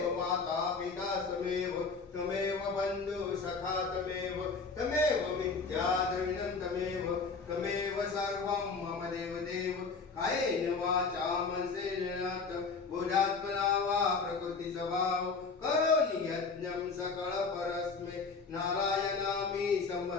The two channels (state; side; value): quieter; right; 4.6 dB